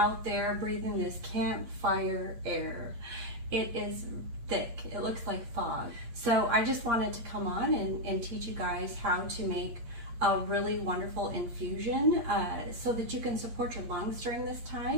there breathing this campfire air. It is thick. It looks like fog. So I just wanted to come on and teach you guys how to make a really wonderful infusion so that you can support your lungs during this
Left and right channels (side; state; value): left; late; 8.5 ms